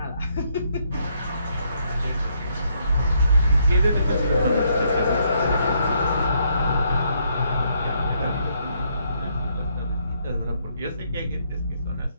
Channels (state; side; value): inverted; both; correlation -0.72